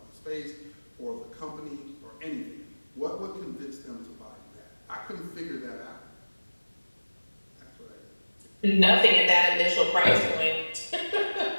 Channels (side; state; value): both; inverted; correlation -1.00